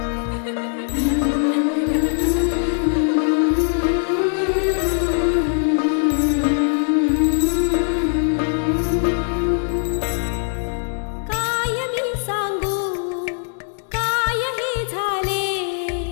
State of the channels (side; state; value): right; silent; 64 dB below the other